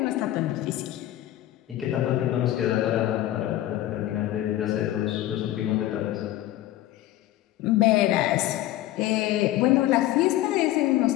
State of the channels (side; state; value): right; quieter; 14.3 dB